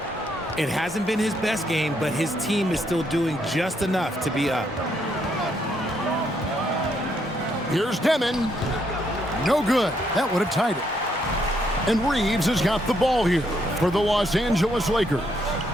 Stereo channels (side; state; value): both; normal; correlation 0.74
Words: It hasn't been his best game, but his team is still doing just enough to be up. Here's Demon. No good. That would have tied it. And Reeves has got the ball here for the Los Angeles Lakers.